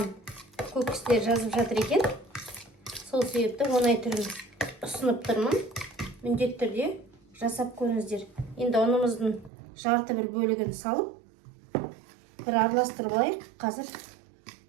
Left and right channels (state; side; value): drops out; left; at 9.5 s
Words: көп кісілер жазып жатыр екен. Сол себепті оңай түрін ұсынып тұрмын. Міндетті түрде жасап көріңіздер. Енді ұнымыздың жарты бір бөлігін салып, бір араластырып алайық. Қазір